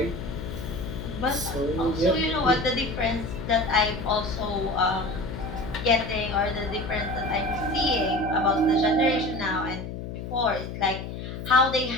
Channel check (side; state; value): left; noise; hum, 8 dB below the sound